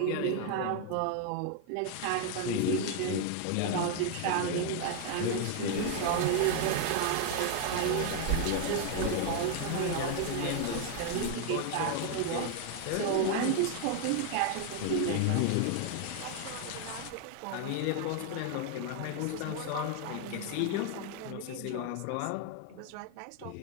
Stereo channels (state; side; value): different; both; correlation 0.00